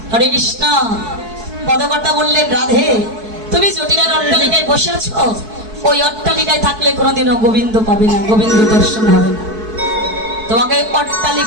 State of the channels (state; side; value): late; left; 4.6 ms